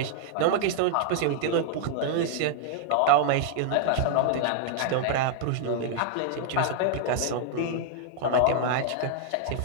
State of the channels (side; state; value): both; different; correlation -0.01